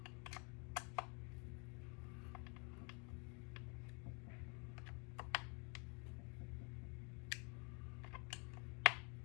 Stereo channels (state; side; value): quieter; right; 34.6 dB